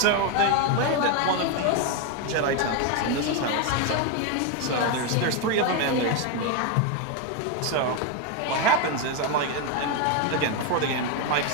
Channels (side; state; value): both; different; correlation 0.02